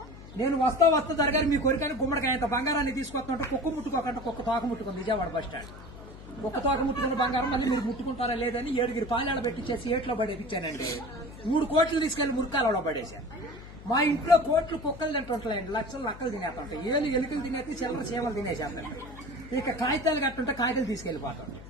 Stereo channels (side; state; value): left; noise; hum, 16 dB below the sound